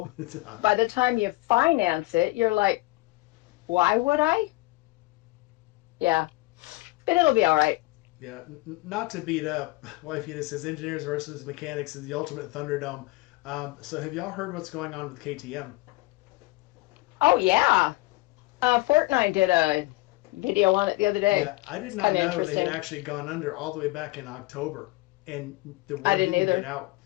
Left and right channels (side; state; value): right; quieter; 21.7 dB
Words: by the time you finance it, you're like, why would I? Yeah, but it'll be all right. Yeah, not to beat up, Wife Unit says engineers versus mechanics is the ultimate Thunderdome. So have y'all heard what's going on with KTM? Oh yeah. Fortnite did a video on it the other day. Yeah, I did It's not kind of know they had interesting. actually gone under all the way back in October, and the I word didn't didn't get either. out.